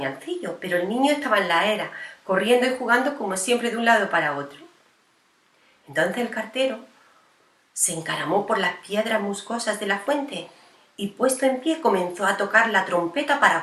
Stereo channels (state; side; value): identical; both; correlation 1.00